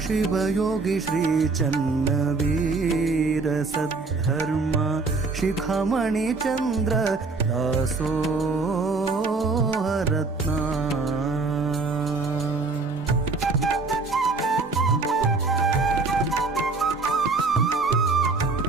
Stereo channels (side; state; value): left; quieter; 3.9 dB